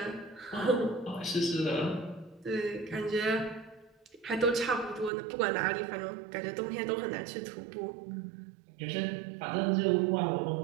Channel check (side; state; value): left; drops out; at 5.1 s